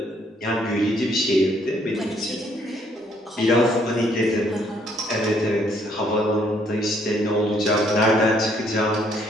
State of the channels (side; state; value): both; normal; correlation 0.67